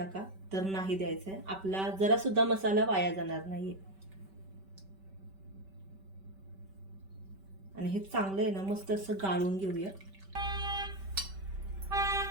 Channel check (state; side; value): late; left; 5.2 ms